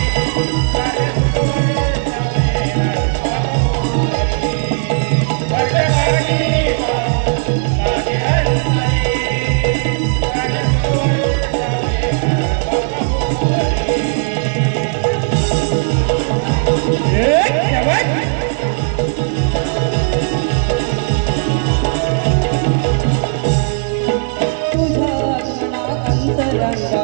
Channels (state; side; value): silent; left; 68 dB below the other